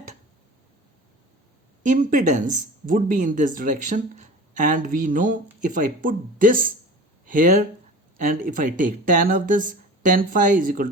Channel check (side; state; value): both; normal; correlation 0.37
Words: impedance would be in this direction, and we know if I put this here and if I take tan of this, tan phi is equal